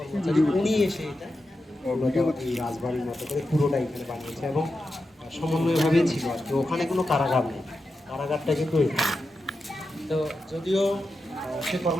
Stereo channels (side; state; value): both; normal; correlation 0.89